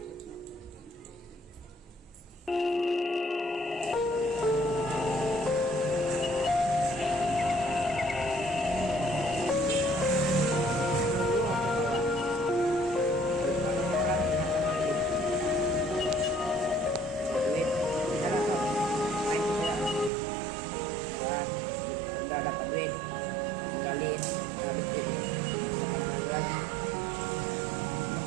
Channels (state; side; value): drops out; left; at 20.1 s